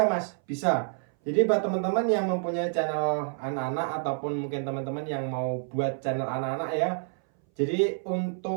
Mas? Bisa. Jadi buat teman-teman yang mempunyai channel anak-anak ataupun mungkin teman-teman yang mau buat channel anak-anak ya. Jadi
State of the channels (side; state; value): left; silent; 59 dB below the other